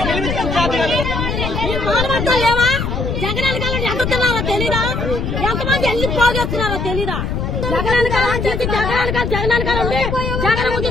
లేవా జగన్ కాలం ఎదుగుతున్నారో తెలీదా? ఎంతమంది ఎన్ని పోగొస్తున్నారో తెలీదా? జగన్ కాలం చేసి జగన్ కాలం ఉండి జగన్ ముందు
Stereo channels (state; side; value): noise; left; rumble, 2 dB below the sound